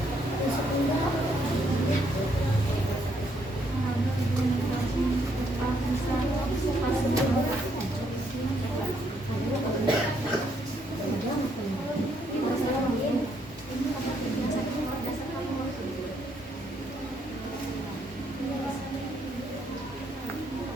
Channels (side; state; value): both; normal; correlation 0.72